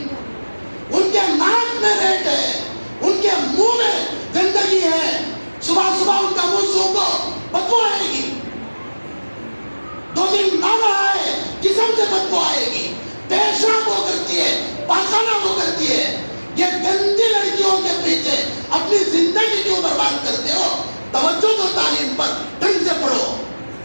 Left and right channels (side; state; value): both; inverted; correlation -1.00